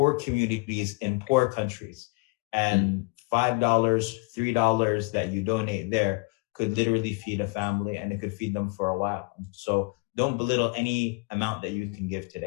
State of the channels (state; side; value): quieter; right; 29.5 dB